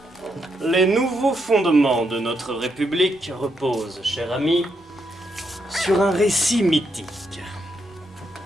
Les nouveaux fondements de notre République reposent, cher ami, sur un récit mythique.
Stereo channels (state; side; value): normal; both; correlation 0.79